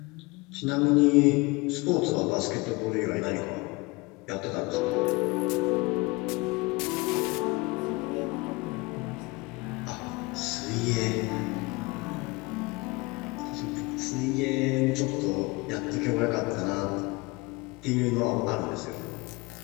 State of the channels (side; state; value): right; quieter; 24.5 dB